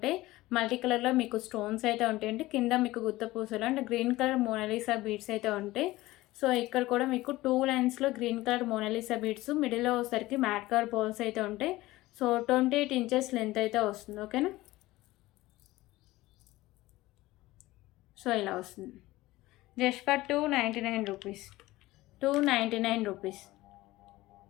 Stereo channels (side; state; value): right; quieter; 18.2 dB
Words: మల్టీ కలర్లో మీకు స్టోన్స్ అయితే ఉంటాయండి. కింద మీకు గుత్త పూసలు అంటే గ్రీన్ కలర్ మోనాలిసా బీడ్స్ అయితే ఉంటాయి. సో ఇక్కడ కూడా మీకు 2 లైన్స్లో గ్రీన్ కలర్ మోనాలిసా బీడ్స్, మిడిల్లో వచ్చేసరికి మ్యాట్ కలర్ బాల్స్ అయితే ఉంటాయి. సో 28 ఇంచెస్ లెంత్ అయితే వస్తుంది. ఓకేనా. సో ఇలా వస్తుంది. Just for 299 rupees. 299 rupees.